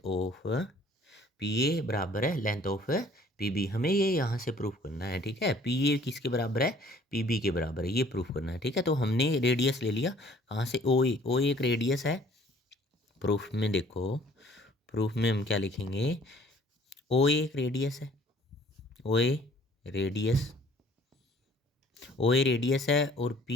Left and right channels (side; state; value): both; normal; correlation 0.56